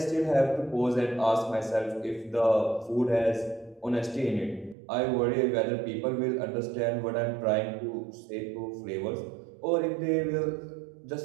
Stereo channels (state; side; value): drops out; left; at 4.8 s